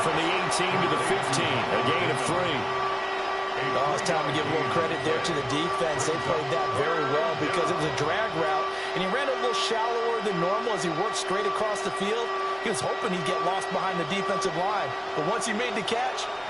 from the 18 to the 15, a gain of 3. Oh, it's time to give a little credit there to the defense. They played that very well because it was a drag route, and he ran a little shallower than normal as he worked straight across the field. He was hoping he'd get lost behind the defensive line, but once he made the catch,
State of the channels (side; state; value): both; identical; correlation 1.00